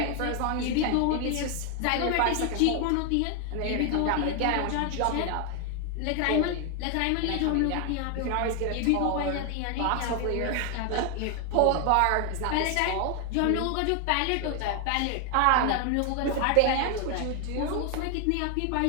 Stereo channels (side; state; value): both; different; correlation 0.00